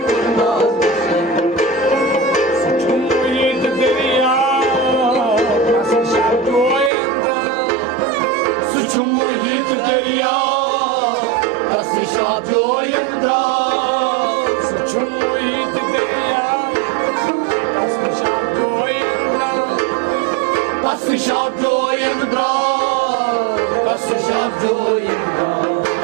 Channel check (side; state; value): left; drops out; at 6.9 s